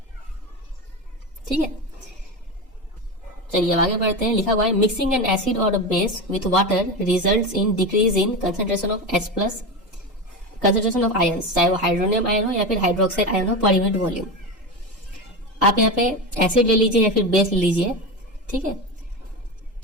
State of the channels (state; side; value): normal; both; correlation 0.20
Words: ठीक है, चलिए अब आगे बढ़ते हैं। लिखा हुआ है मिक्सिंग एन एसिड और base with water results in decrease in concentration of H+ concentration of ions, चाहे वो हाइड्रोनियम आयन हो या फिर हाइड्रोक्साइड आयन हो पर यूनिट वॉल्यूम। आप यहाँ पे एसिड ले लीजिए या फिर बेस ले लीजिए, ठीक है।